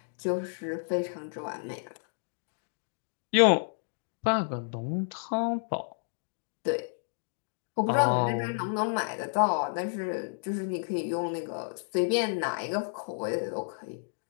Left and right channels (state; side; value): silent; right; digital silence